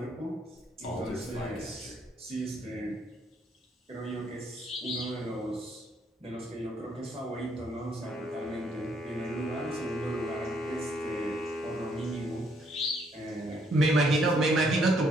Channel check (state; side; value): normal; both; correlation 0.70